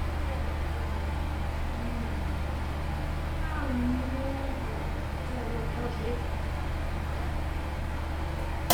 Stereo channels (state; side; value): identical; both; correlation 1.00